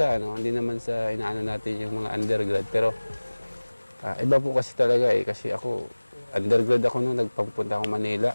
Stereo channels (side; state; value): both; inverted; correlation -1.00